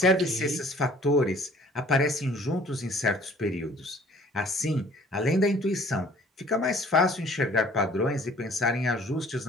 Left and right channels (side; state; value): both; normal; correlation 0.54